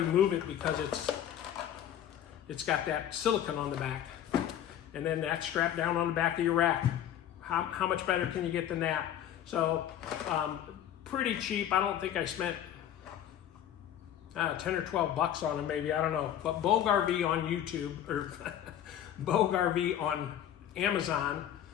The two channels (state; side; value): quieter; right; 10.7 dB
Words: move it because it's got that silicone on the back, and then that's strapped down on the back of your rack. How much better can you get than that? So pretty cheap. I don't think I spent 10 or 12 bucks on them, maybe, I don't know. But Bogue RV on YouTube, or Bogue RV on Amazon,